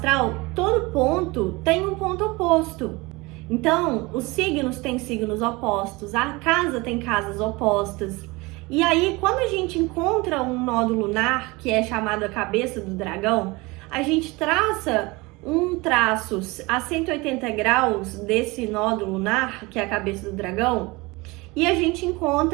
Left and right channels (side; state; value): left; quieter; 23.8 dB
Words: todo ponto tem um ponto oposto. Então, os signos têm signos opostos, a casa tem casas opostas. E aí, quando a gente encontra um nodo lunar, que é chamado a cabeça do dragão, a gente traça um traço a 180 graus desse nodo lunar, que é a cabeça do dragão, e a gente